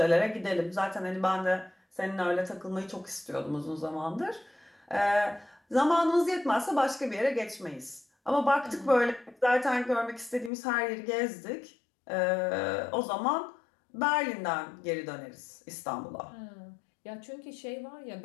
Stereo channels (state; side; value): drops out; right; at 10.5 s